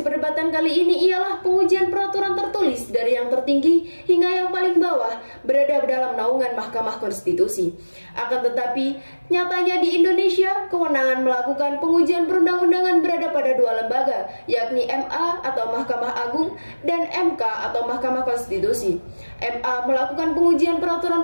perdebatan kali ini ialah pengujian peraturan tertulis dari yang tertinggi hingga yang paling bawah berada dalam naungan Mahkamah Konstitusi. Akan tetapi, nyatanya di Indonesia, kewenangan melakukan pengujian perundang-undangan berada pada dua lembaga, yakni MA atau Mahkamah Agung dan MK atau Mahkamah Konstitusi. MA melakukan pengujian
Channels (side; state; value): both; inverted; correlation -1.00